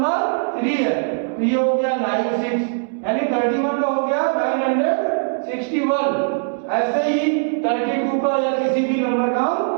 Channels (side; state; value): left; silent; 65 dB below the other